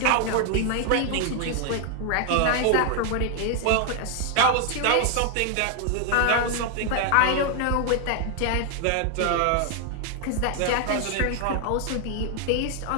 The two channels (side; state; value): both; different; correlation 0.00